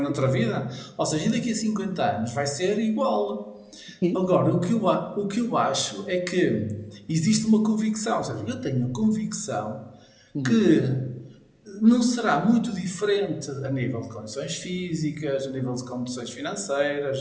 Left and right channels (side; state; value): both; identical; correlation 1.00